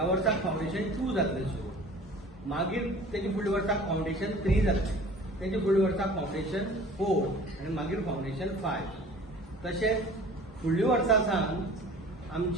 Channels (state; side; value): normal; both; correlation 0.45